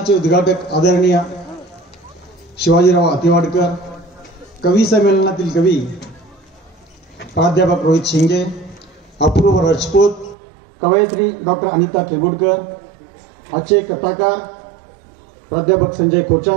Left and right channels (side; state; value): left; drops out; at 10.4 s